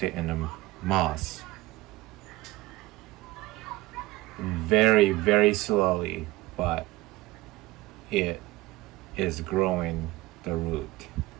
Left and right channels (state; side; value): quieter; left; 19.3 dB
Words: it in a moss. Very, very slowly, but it is growing the root.